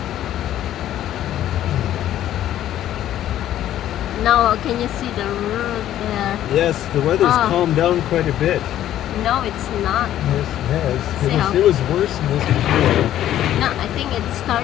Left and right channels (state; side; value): quieter; right; 12.2 dB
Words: Now, can you see the road there? Yes, the weather's calmed down quite a bit. No, it's not. Yes, it has. It was worse than this before. No, I think it